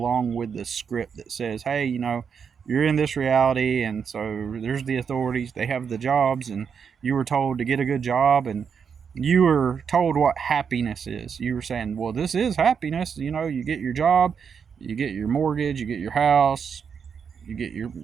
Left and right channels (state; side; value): quieter; left; 6.7 dB